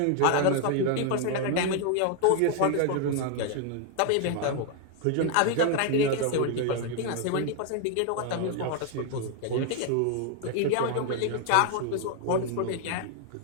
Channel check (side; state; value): both; different; correlation 0.00